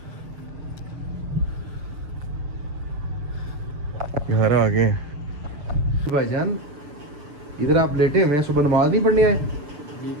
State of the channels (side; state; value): left; late; 6.8 ms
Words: यहाँ आ गए भाईजान, इधर आप लेटे हुए हैं, सुबह नमाज नहीं पढ़ने आए? जी